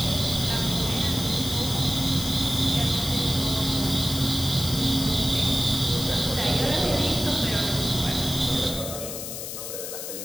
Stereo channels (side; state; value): left; noise; hiss, 7 dB below the sound